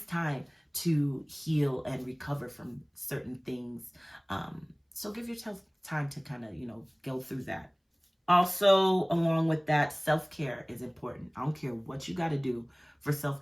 time to heal and recover from certain things. So give yourself time to kind of, go through that. Also, along with that, self-care is important. I don't care what you got to do for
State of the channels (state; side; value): identical; both; correlation 1.00